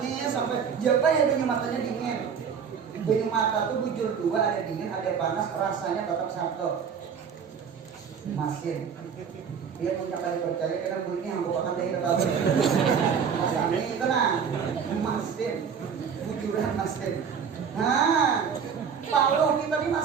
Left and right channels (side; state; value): left; quieter; 6.9 dB